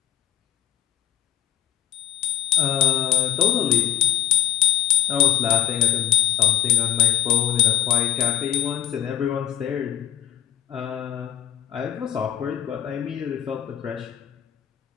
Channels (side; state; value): right; quieter; 10.4 dB